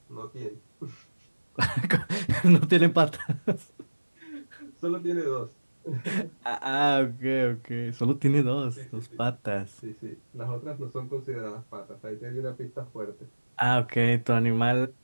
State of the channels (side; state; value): both; inverted; correlation -1.00